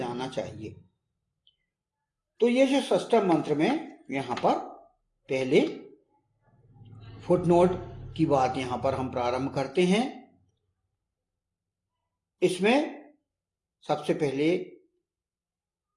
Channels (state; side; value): identical; both; correlation 1.00